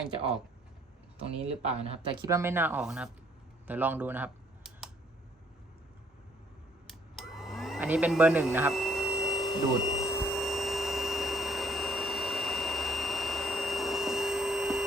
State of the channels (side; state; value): both; normal; correlation 0.63